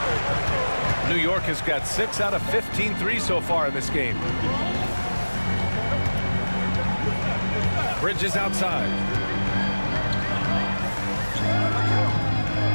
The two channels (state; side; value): inverted; both; correlation -1.00